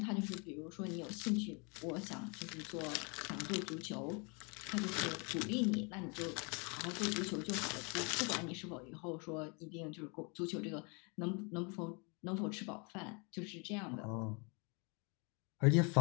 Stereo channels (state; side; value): quieter; right; 32.9 dB